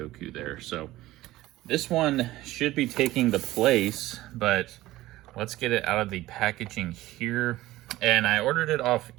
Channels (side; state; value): left; quieter; 16.7 dB